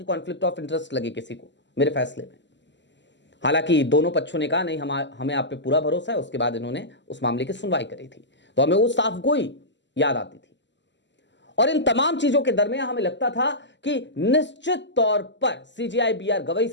कॉन्फ्लिक्ट ऑफ इंटरेस्ट लगे किसी को मेरे फैसले में। हालांकि दोनों पक्षों ने कहा नहीं, हमें आप पे पूरा भरोसा है। उसके बाद इन्होंने उस मामले की सुनवाई करी थी, तो हमें वो साफगोई याद आती थी। और इन तमाम चीजों के दरमियान हमें लगता था कि निश्चित तौर पर सीजीआई बी आर गवई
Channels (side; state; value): right; late; 0.53 ms